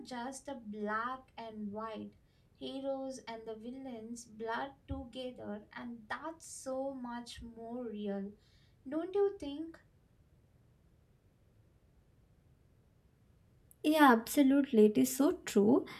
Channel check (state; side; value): identical; both; correlation 1.00